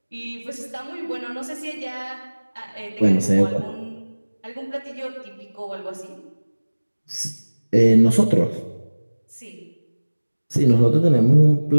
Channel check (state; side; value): inverted; both; correlation -1.00